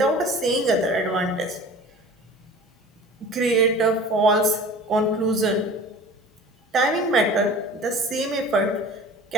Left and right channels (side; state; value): both; normal; correlation 0.41